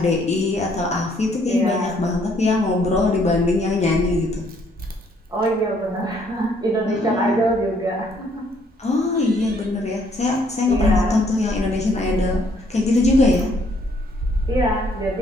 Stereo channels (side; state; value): both; normal; correlation 0.66